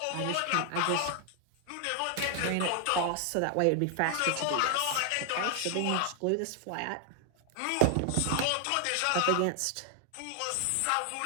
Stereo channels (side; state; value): both; different; correlation 0.00